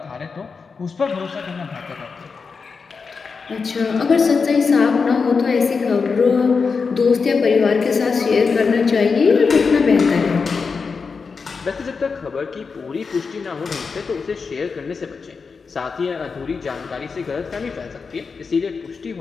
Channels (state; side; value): quieter; right; 5.1 dB